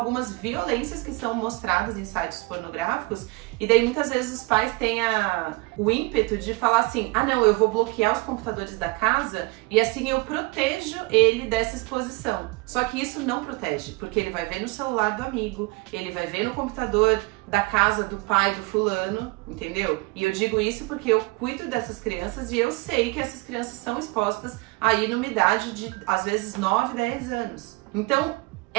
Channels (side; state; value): left; quieter; 24.3 dB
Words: violências que são mostradas em sites pornográficos. E daí muitas vezes os pais têm o ímpeto de falar assim, não, eu vou bloquear os computadores da casa e assim eu protejo ele dessa exposição. Só que isso não protege, porque ele vai ver no celular do amigo, ele vai ver no computador da casa do pai do fulano, entendeu? E eu digo isso porque eu cuido dessas crianças e eu sei que essas crianças são expostas aí numa idade de, às vezes, 9, 10 anos. Então,